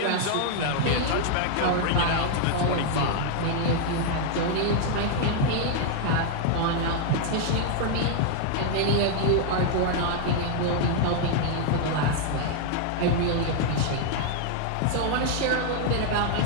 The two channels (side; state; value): both; different; correlation 0.00